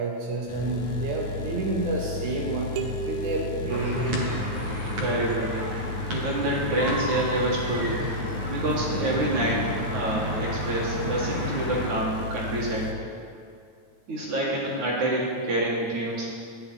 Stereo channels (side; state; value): left; late; 9.3 ms